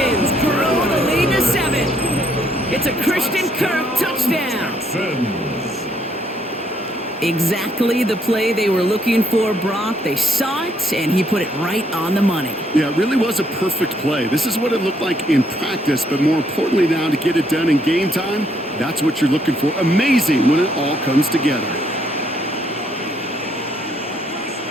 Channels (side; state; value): both; normal; correlation 0.70